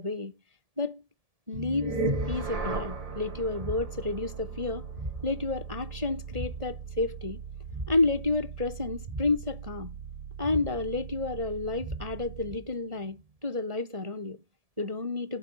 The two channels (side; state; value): left; late; 1.5 ms